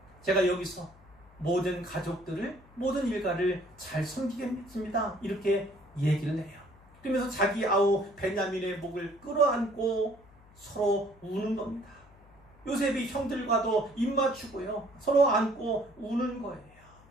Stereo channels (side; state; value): left; noise; hum, 26 dB below the sound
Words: 제가 여기서 모든 가족들을, 모든 일가를 잘 섬기겠습니다. 이렇게 얘기를 해요. 그러면서 자기 아우 베냐민의 목을 끌어안고 서로 우는 겁니다. 요셉이 형들과도 입맞추고요. 서로 안고 우는 거예요.